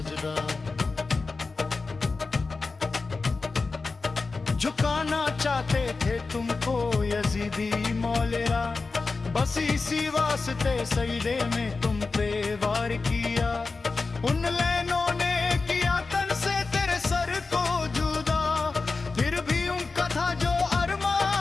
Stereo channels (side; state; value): right; quieter; 4.0 dB